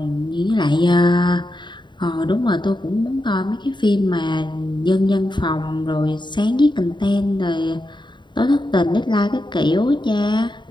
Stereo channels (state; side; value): late; right; 0.22 ms